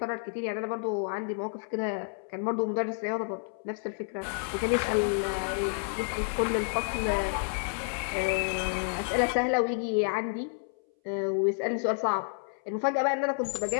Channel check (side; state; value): right; silent; 58 dB below the other